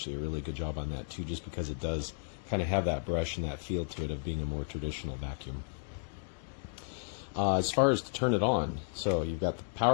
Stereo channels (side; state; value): right; silent; 56 dB below the other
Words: a really good job on that too, just because it does kind of have that brush and that feel to it of being a more traditional vacuum. As far as to turn it on, so you've got the